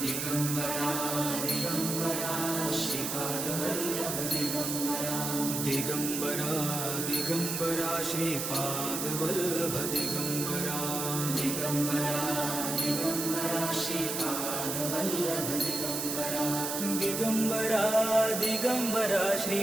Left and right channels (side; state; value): right; noise; hiss, 3 dB below the sound